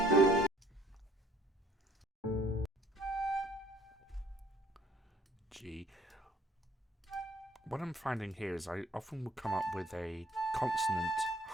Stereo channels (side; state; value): both; normal; correlation 0.58